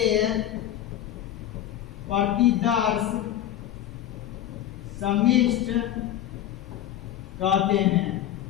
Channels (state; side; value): quieter; right; 11.9 dB